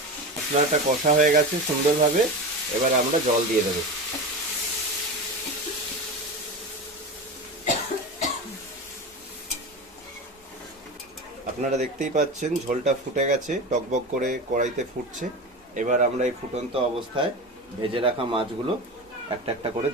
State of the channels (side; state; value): both; normal; correlation 0.26